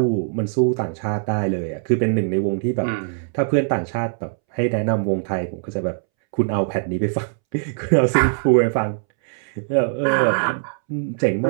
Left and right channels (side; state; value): left; silent; 65 dB below the other